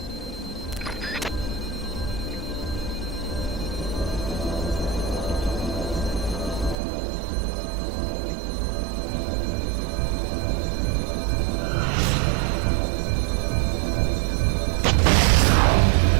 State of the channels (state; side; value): drops out; left; at 6.8 s